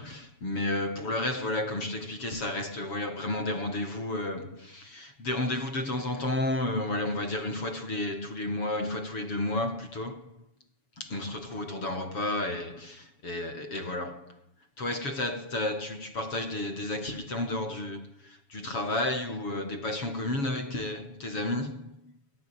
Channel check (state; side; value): late; right; 7.1 ms